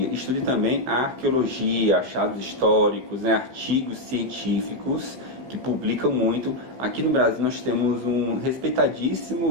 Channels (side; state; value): left; late; 15 ms